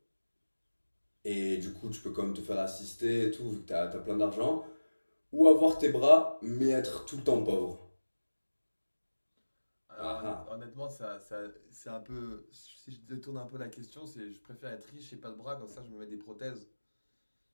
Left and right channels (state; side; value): inverted; both; correlation -1.00